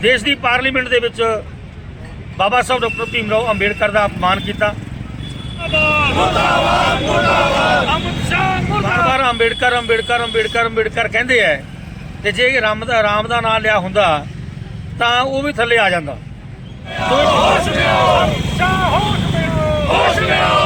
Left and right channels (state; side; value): identical; both; correlation 1.00